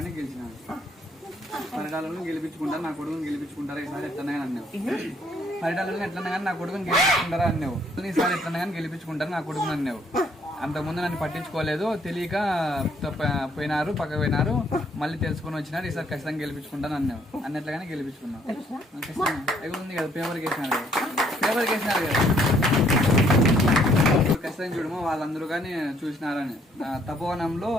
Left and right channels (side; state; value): both; normal; correlation 0.66